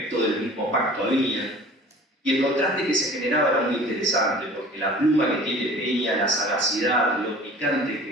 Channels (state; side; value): normal; both; correlation 0.45